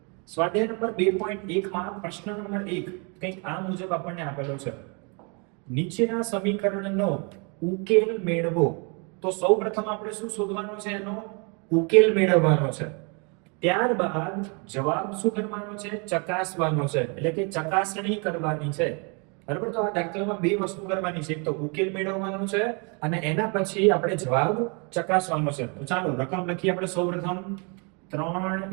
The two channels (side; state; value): left; quieter; 34.1 dB